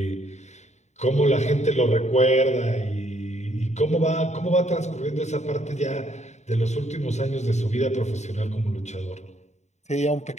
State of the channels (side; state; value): right; late; 0.33 ms